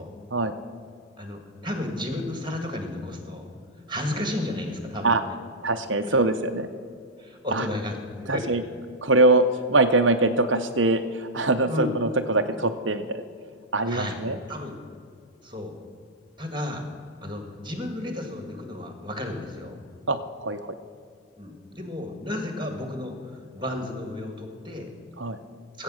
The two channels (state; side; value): normal; both; correlation -0.08